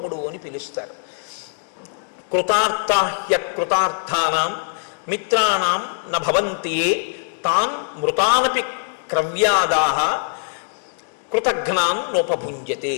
అని పిలుస్తారు. కృతార్థాహ్య కృతార్థానాం మిత్రాణం న భవంతి తాన్ మృతానపి క్రవ్యాదాహ కృతఘ్నాన్ నోపభుంజతే.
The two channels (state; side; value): silent; right; digital silence